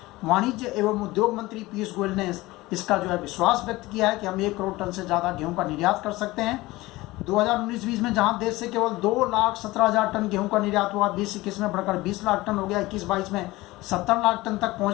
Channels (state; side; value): quieter; right; 19.5 dB